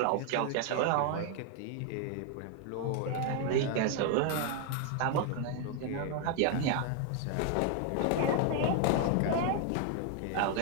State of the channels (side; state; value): both; different; correlation 0.00